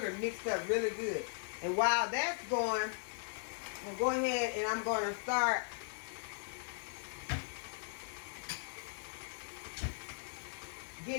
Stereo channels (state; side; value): silent; right; 52 dB below the other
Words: mixed up really good. And while that's going, I'm going to go ahead and I'm going to start